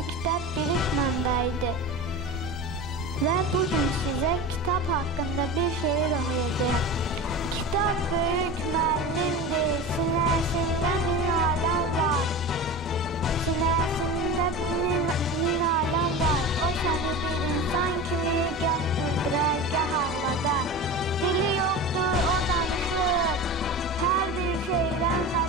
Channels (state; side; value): normal; both; correlation 0.30